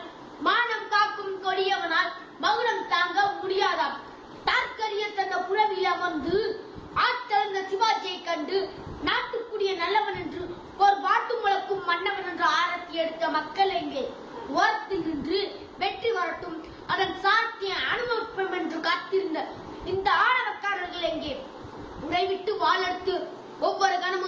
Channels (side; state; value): both; identical; correlation 1.00